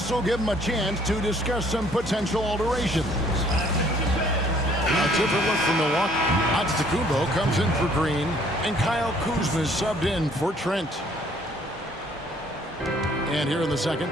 will give him a chance to discuss some potential alterations. A different look from Milwaukee. Antetokounmpo comes in for Green, and Kyle Kuzma is subbed in for Trent. And here in the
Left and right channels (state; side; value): normal; both; correlation 0.60